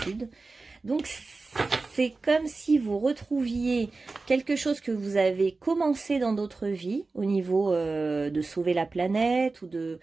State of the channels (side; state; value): left; quieter; 3.7 dB